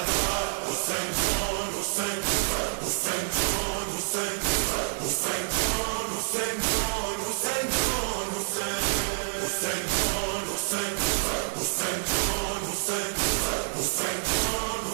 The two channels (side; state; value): left; silent; digital silence